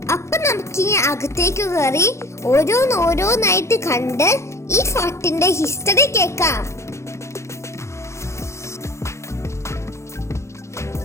അപ്പൊ നമുക്കിനി അകത്തേക്ക് കയറി ഓരോന്നായിട്ട് കണ്ട് ഈ ഫോർട്ടിന്റെ ഹിസ്റ്ററി കേൾക്കാം.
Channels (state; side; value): late; right; 0.14 ms